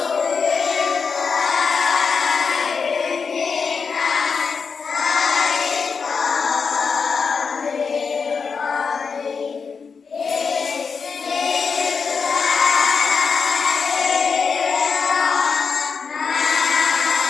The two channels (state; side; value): quieter; right; 5.5 dB